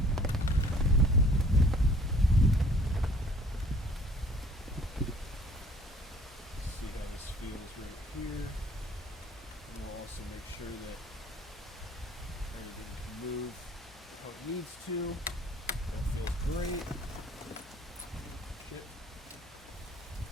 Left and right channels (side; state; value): both; normal; correlation 0.54